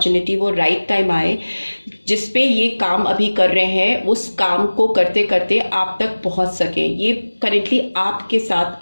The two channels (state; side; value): inverted; both; correlation -1.00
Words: वो राइट टाइम आए जिस पे ये काम अभी कर रहे हैं, उस काम को करते करते आप तक पहुंच सकें। ये करेंटली आपके साथ